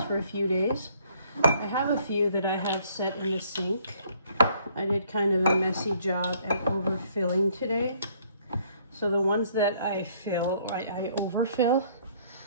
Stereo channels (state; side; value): inverted; both; correlation -0.63